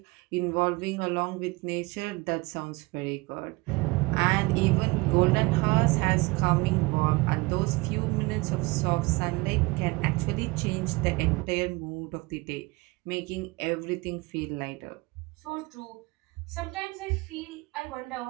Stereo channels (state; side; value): quieter; left; 24.3 dB